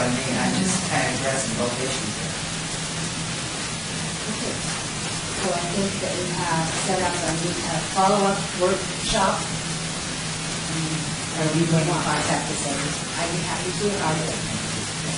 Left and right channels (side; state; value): both; identical; correlation 1.00